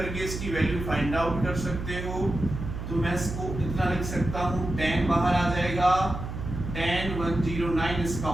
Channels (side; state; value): right; noise; hum, 7 dB below the sound